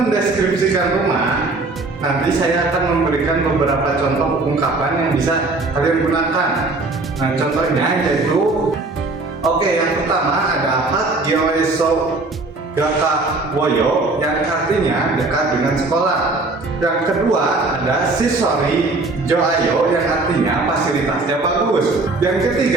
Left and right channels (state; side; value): quieter; left; 3.3 dB